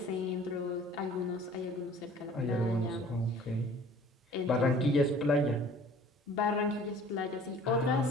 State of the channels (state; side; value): normal; both; correlation 0.49